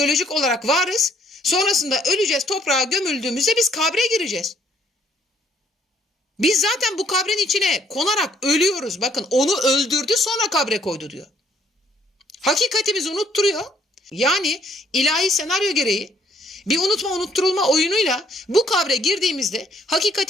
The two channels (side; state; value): both; normal; correlation 0.65